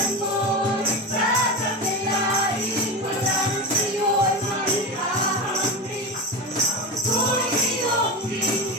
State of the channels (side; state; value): both; normal; correlation 0.21